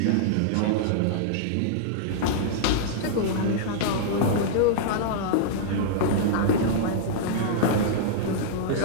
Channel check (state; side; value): different; both; correlation -0.02